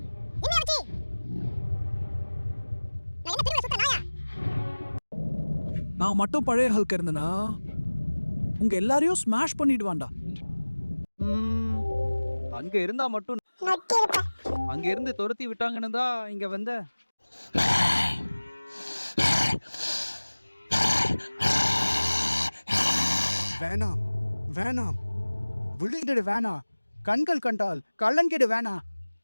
என்ன ஆச்சு? நான் என்ன திரும்ப சுத்த நாயா? நான் மட்டும் பழைய ஹல்க் இருந்தனா உங்க எல்லாரையும் ஸ்மாஷ் பண்ணிடுவான்டா. அங்க இருந்தா மட்டும் அங்க இருந்து துரத்தி விட்டாங்கன்னு தான் இங்க வந்த. வேணாம் வேணாம், விழுங்கிடு வேணாம், கண்கள் கண்டால் கள்ளன்கிடு வேணாம்.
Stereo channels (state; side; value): inverted; both; correlation -1.00